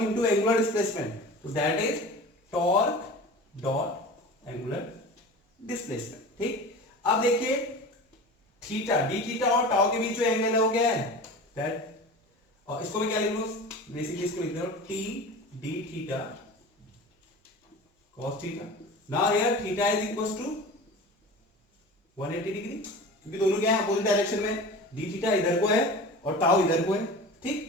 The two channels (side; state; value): both; normal; correlation 0.35